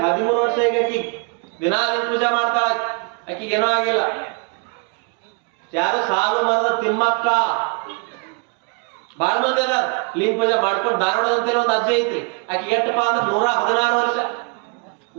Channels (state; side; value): quieter; left; 35.4 dB